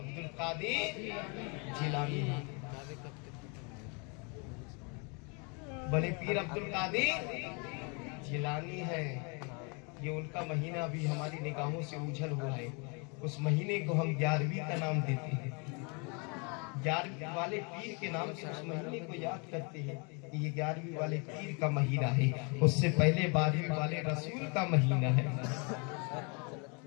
कादिर जिलानी है। बड़े पीर अब्दुल कादिर जिलानी है। ये उनका महीना अभी हमारी निगाहों से उछल हुआ है। उस महीने को हम 11वीं का नाम देते हैं। 11वीं वाले पीर के नाम से उस महीने को याद करते हैं कि ये 11वीं वाले पीर का महीना है। उससे पहले 12वीं वाले रसूल का महीना है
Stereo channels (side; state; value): right; quieter; 33.6 dB